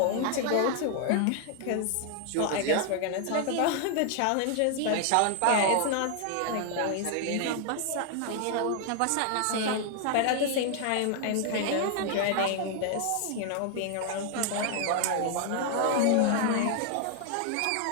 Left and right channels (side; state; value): both; different; correlation 0.00